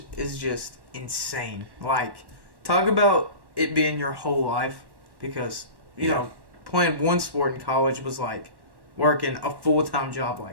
is just insane. Like, talk about it being your whole life because, you know, playing one sport in college was like working a full-time job,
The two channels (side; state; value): left; late; 1.1 ms